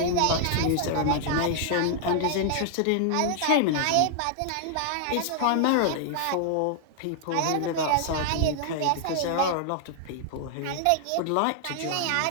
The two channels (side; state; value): both; different; correlation -0.01